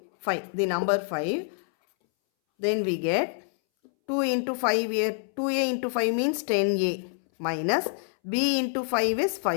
5, the number 5. Then we get 2 into 5 here, 2a into 5 means 10a minus b into 5 is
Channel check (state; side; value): silent; right; 60 dB below the other